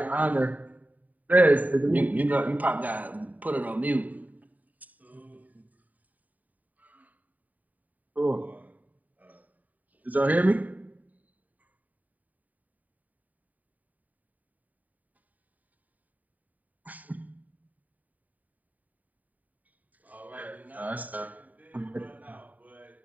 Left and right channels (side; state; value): left; late; 0.076 ms